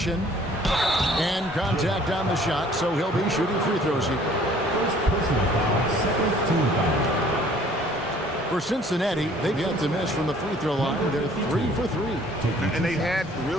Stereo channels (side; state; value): both; normal; correlation 0.56